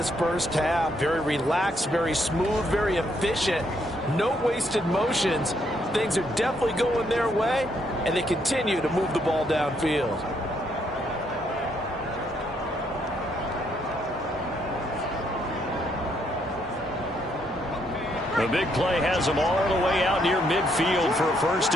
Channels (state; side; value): normal; both; correlation 0.73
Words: first half. Very relaxed, very smooth, very efficient. No wasted motions. Things are definitely going their way, and they continue to move the ball downfield. The big play has them all the way out near midfield for a 1st